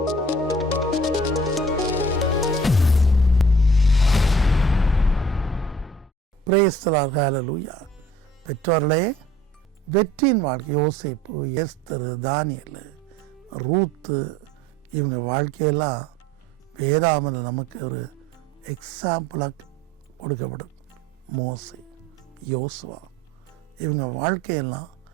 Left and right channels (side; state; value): both; normal; correlation 0.51